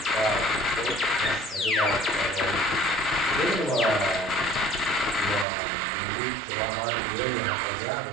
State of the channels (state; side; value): drops out; left; at 5.5 s